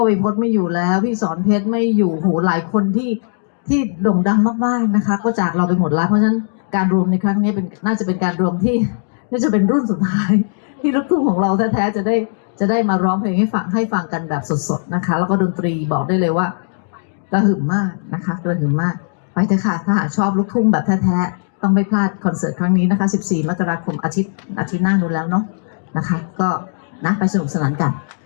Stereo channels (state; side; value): silent; right; digital silence